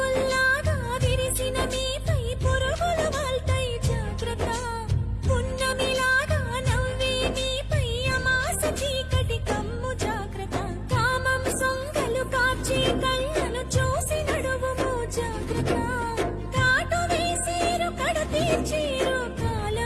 విరిసిన మీపై పురుగులు వాల్తాయి జాగ్రత్త పున్నమిలాగా నవ్వే మీపై అమాస చీకటి కమ్ము జాగ్రత్త కామం సొంగలు కాచి కళ్ళను చూసి నడువుము జాగ్రత్త చీరు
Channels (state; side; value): identical; both; correlation 1.00